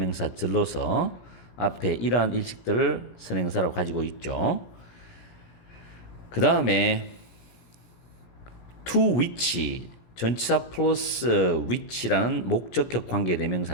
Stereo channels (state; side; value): late; right; 17 ms